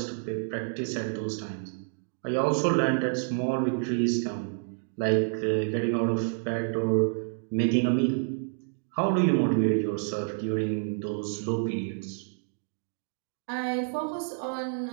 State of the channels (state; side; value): silent; left; digital silence